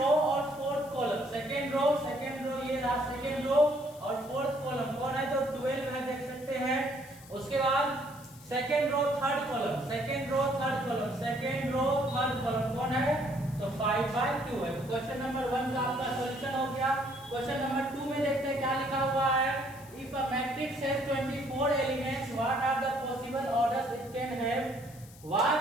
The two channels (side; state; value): left; noise; hiss, 21 dB below the sound